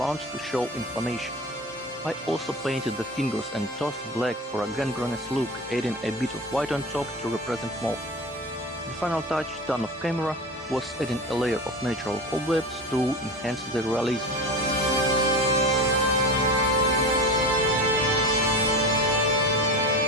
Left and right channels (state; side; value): normal; both; correlation 0.29